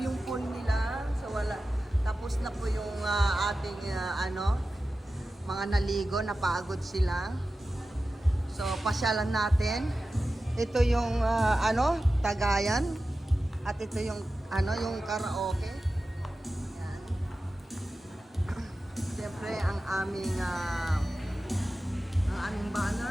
pool nila. So wala, tapos na po yung ating mga naligo, napagod sila. So pasyalan natin. Ito yung Tagayan at ito yung yung karaoke. Yan. Siyempre ang aming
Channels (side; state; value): both; normal; correlation 0.94